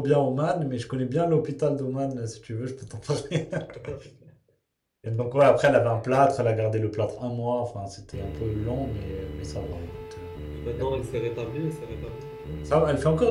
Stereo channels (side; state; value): both; identical; correlation 1.00